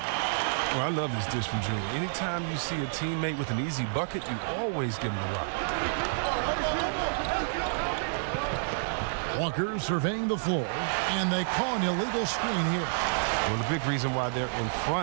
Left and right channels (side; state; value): left; silent; digital silence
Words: Well, I love this dish from Junior. Anytime you see a teammate with an easy bucket, you always give him the rock. Walker surveying the floor, and they call an illegal screen here. Well, the big reason why they're in